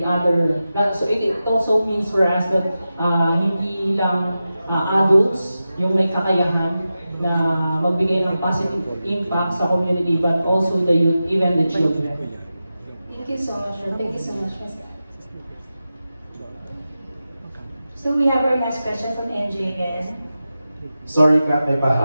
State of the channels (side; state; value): both; inverted; correlation -0.92